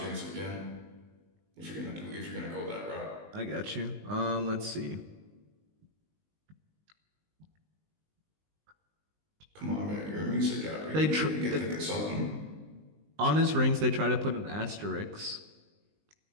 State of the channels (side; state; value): left; late; 19 ms